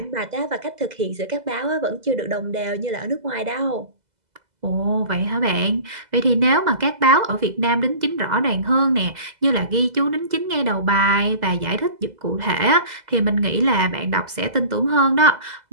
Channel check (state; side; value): late; left; 2.0 ms